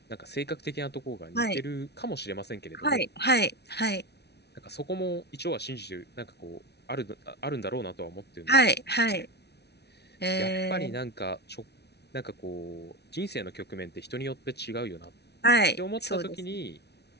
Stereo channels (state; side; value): late; right; 0.49 ms